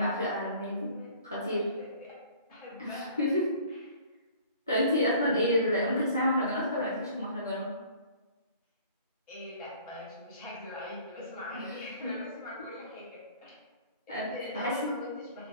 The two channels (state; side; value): inverted; both; correlation -0.51